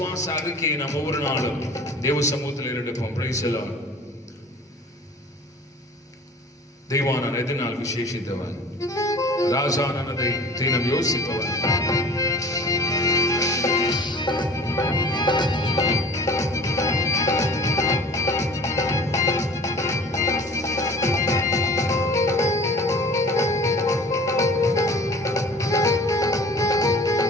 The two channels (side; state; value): both; normal; correlation 0.44